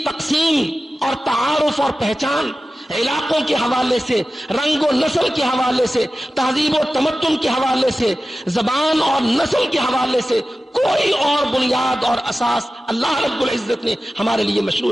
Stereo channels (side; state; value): both; normal; correlation 0.95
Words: تقسیم اور تعارف اور پہچان علاقوں کے حوالے سے، رنگ و نسل کے حوالے سے، تہذیب و تمدن کے حوالے سے، زبان اور نسل کے حوالے سے کوئی اور بنیاد اور اساس اللہ رب العزت نے ہمارے لیے مشروع